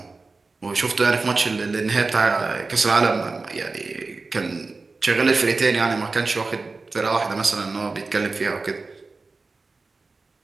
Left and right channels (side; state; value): left; quieter; 3.8 dB